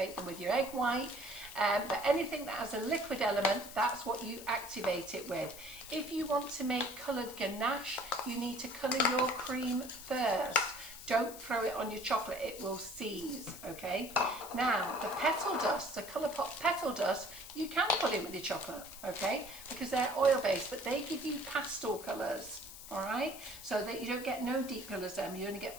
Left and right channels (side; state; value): left; noise; hiss, 14 dB below the sound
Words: them with your egg white. But anything that has a liquid element, that's what you activate it with. If you want to make coloured ganache, you need to colour your cream first. Don't throw it on your chocolate, it will seize, okay? Now, the petal dust, the Colourpop petal dust, you can put in with your chocolate, okay? Because they're oil-based, but they give you pastel colours. All right, so that you don't get no deep colours then, you only